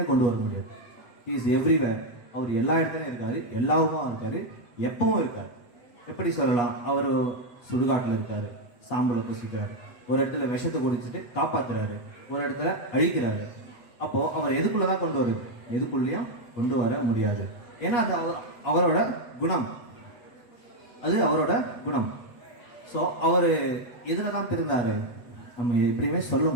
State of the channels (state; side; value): late; right; 7.9 ms